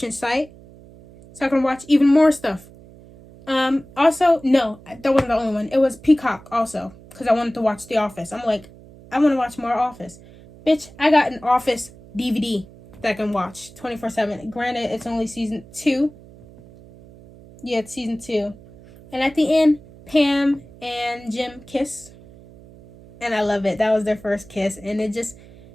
site so I can watch even more stuff. Also, no, that wasn't the only one. It was Peacock also, because I wanted to watch The Office. I'm like, I want to watch more Office. Bitch, I got an Office DVD that I can watch 24/7. Granted, it's only season 2. Yeah, it's season 2. And at the end, Pam and Jim kiss. And I love it. That was their first kiss. And it just,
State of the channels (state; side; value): noise; right; hum, 21 dB below the sound